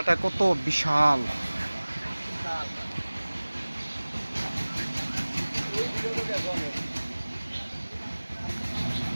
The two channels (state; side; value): inverted; both; correlation -1.00